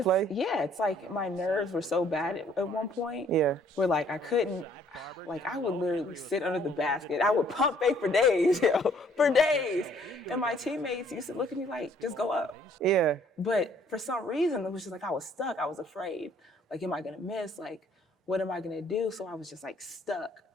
play? Yeah, it's like my nerves were so bad at one point. Yeah. Where like I couldn't, like I would literally sit under the basket. I would pump fake for days, for days. And my teammates used to look at me like, just go up. Yeah. But for some reason, it was just like I was stuck. I was afraid. Like, am I gonna miss? Like, what am I gonna do? So I was just like stuck.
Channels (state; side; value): normal; both; correlation 0.62